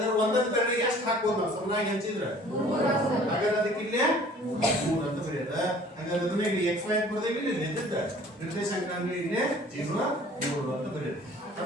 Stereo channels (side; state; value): both; normal; correlation 0.51